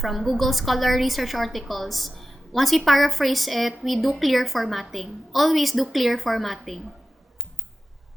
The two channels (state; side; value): normal; both; correlation 0.94